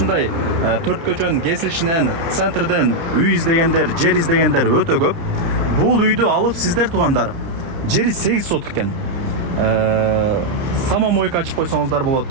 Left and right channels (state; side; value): late; left; 30 ms